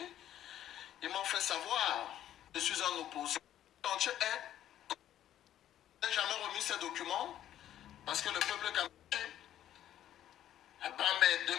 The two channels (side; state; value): right; quieter; 11.6 dB